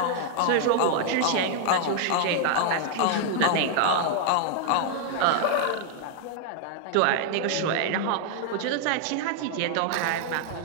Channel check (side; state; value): both; different; correlation 0.00